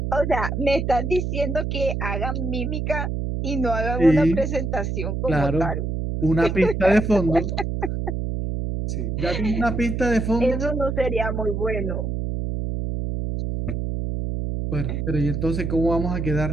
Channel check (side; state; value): right; noise; hum, 2 dB below the sound